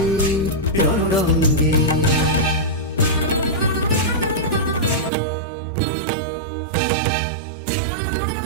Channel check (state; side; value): drops out; left; at 5.1 s